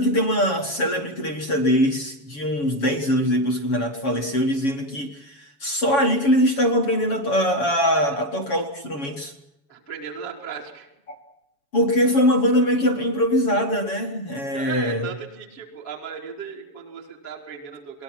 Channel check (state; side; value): late; right; 7.1 ms